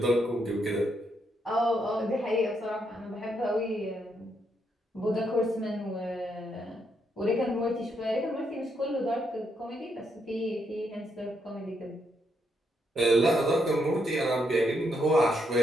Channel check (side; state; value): both; normal; correlation 0.78